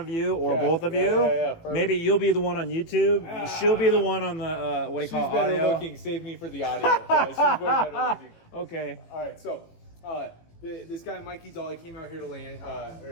you or both of you. Yeah, maybe you'll be the one on YouTube. She'll be the one on the, what do you call it, audio? She's better looking. Save me for the audio. She's way better looking. Okay. All right, so this guy, Mikey Doll, he came out here to land,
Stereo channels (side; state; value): right; late; 18 ms